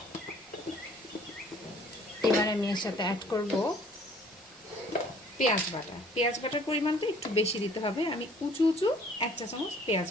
এবার আমি এর সাথে অ্যাড করব পেঁয়াজ বাটা। পেঁয়াজ বাটার পরিমাণটা একটু বেশি দিতে হবে। আমি উঁচু 1 চা চামচ পেঁয়াজ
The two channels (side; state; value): both; normal; correlation 0.56